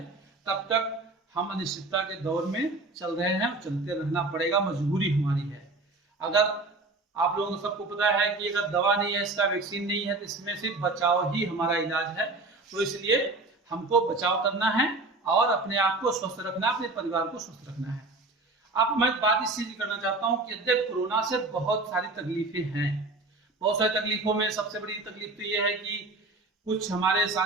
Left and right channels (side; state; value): left; quieter; 3.2 dB